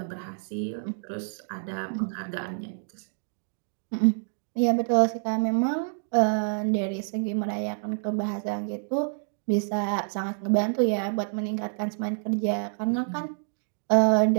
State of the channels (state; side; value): silent; left; 60 dB below the other